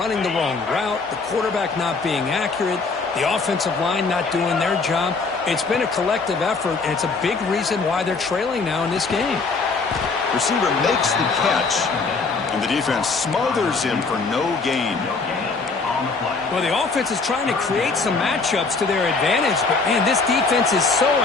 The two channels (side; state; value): right; quieter; 4.2 dB